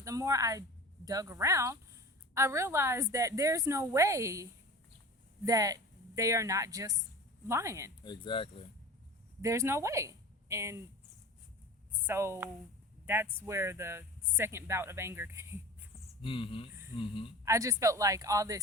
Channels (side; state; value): both; normal; correlation 0.35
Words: the more I dug around, I realized that there's no way that they are not just lying. Exactly. There's no way. And so that's where the second bout of anger came from. Mm-hmm. Mm-hmm. I just felt like all